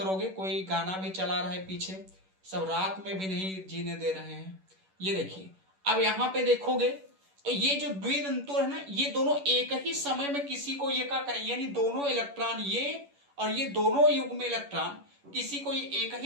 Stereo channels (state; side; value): late; left; 11 ms